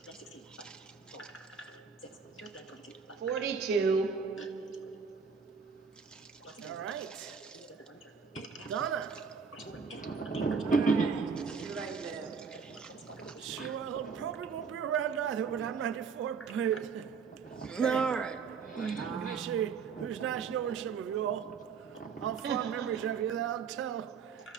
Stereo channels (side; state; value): left; quieter; 5.9 dB